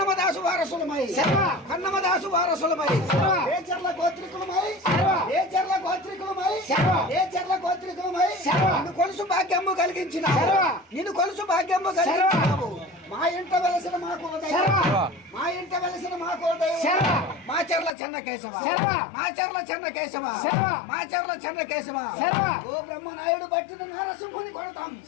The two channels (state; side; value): drops out; right; at 17.9 s